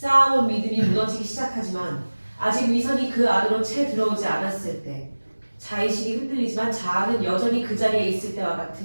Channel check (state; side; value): inverted; both; correlation -1.00